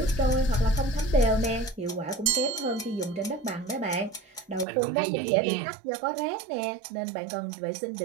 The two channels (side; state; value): left; drops out; at 4.7 s